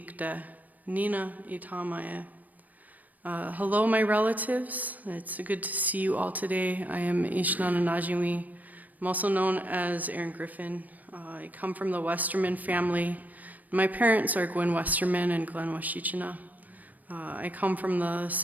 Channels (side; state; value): left; late; 0.079 ms